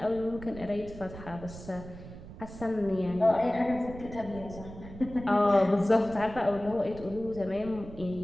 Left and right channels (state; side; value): noise; right; rumble, 14 dB below the sound